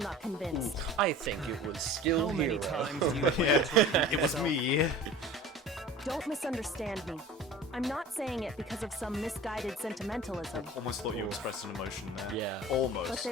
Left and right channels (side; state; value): both; normal; correlation 0.40